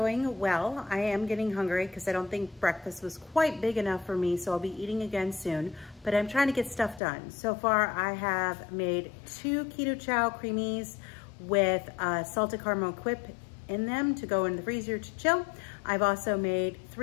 well. I am getting hungry because I don't think breakfast was quite big enough for me, so I'll be eating again soon, but I'm trying to get stuff done. So far, I have made 2 keto chow creamies with salted caramel whip in them to go in the freezer to chill. I've also made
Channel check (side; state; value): right; drops out; at 7.0 s